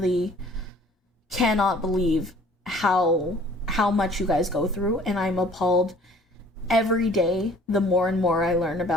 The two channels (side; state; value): both; normal; correlation 0.53